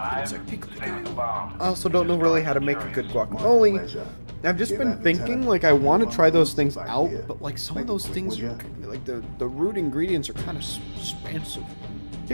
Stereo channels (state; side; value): inverted; both; correlation -1.00